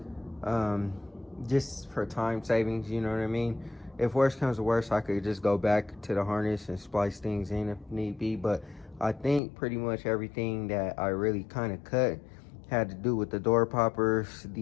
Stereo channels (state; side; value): drops out; right; at 9.4 s